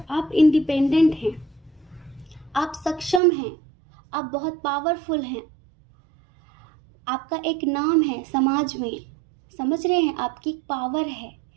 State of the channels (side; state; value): left; drops out; at 3.2 s